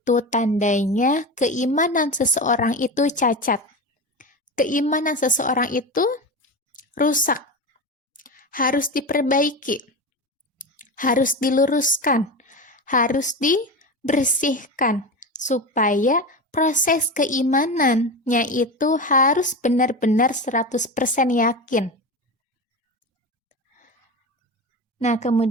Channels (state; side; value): normal; both; correlation 0.23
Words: tandanya keimanan seseorang itu cacat. Keimanan seseorang itu rusak. Harus diperbaiki, harus diluruskan, harus dibersihkan, supaya proses keimanannya itu harus benar-benar 100% yakin. Nah,